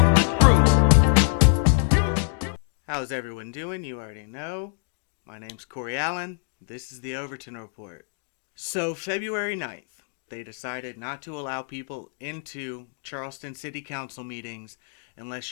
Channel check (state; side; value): silent; right; digital silence